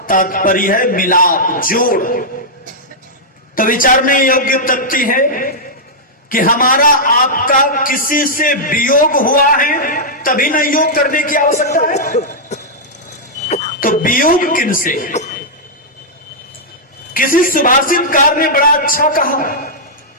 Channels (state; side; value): normal; both; correlation -0.08